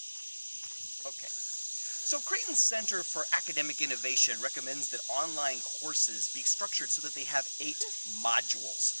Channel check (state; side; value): inverted; both; correlation -1.00